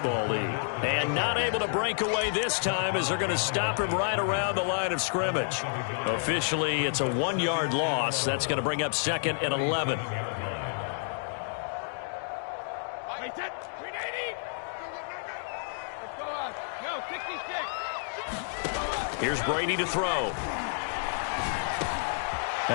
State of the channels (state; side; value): silent; right; digital silence